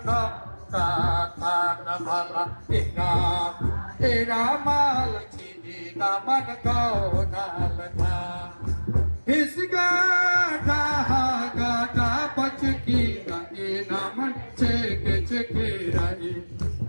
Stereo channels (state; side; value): inverted; both; correlation -1.00